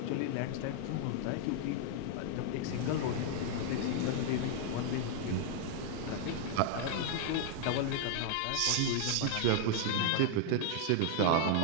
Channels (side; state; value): both; different; correlation 0.00